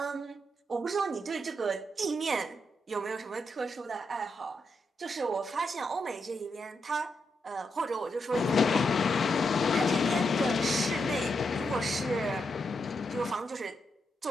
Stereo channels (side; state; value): both; normal; correlation 0.83